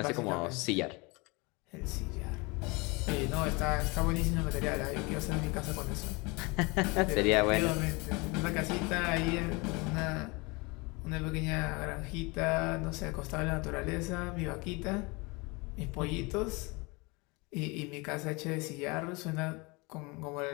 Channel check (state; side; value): quieter; right; 26.9 dB